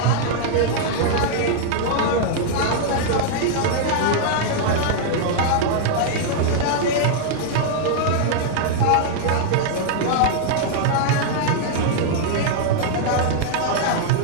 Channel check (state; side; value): different; both; correlation 0.00